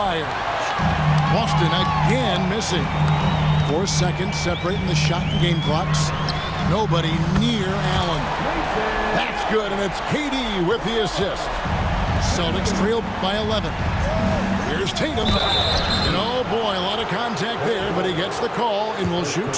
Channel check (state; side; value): identical; both; correlation 1.00